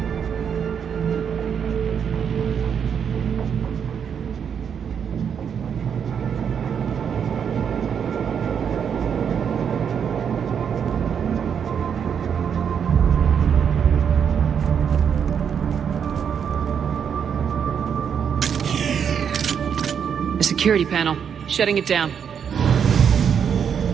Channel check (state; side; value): quieter; left; 7.6 dB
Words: The security panel. Shutting it down.